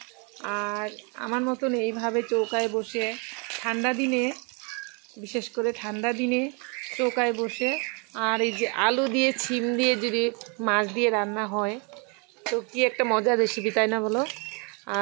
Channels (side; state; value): left; quieter; 34.3 dB